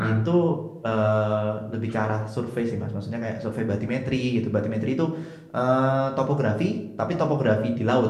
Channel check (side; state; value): both; identical; correlation 1.00